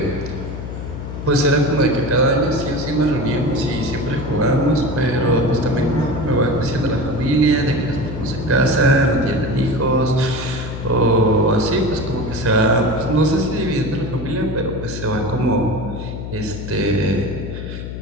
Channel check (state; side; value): noise; left; hum, 8 dB below the sound